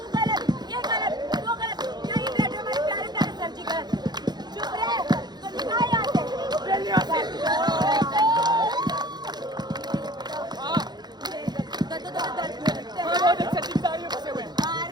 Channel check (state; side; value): late; left; 0.20 ms